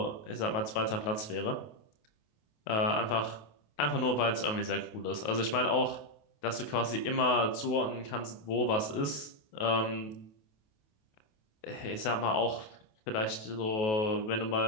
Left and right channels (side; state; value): right; late; 28 ms